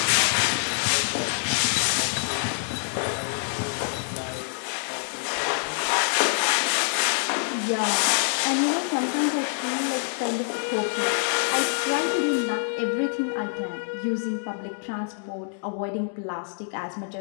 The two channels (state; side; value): silent; right; digital silence